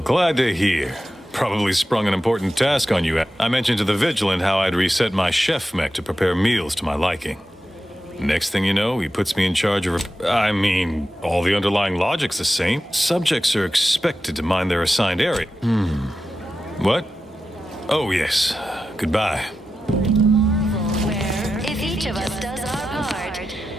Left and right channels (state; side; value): normal; both; correlation 0.91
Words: glad to hear. Probably sprung an important task on you. I mentioned to the Vigilant how I'd reset my chef mech to prepare meals to my liking. Next thing you know, he puts me in charge of... I mean, all the underlying logic's the same. Subjects are expected to mind their assigned area. What? Oh, yes. Goodbye. Where, if each of us does our part,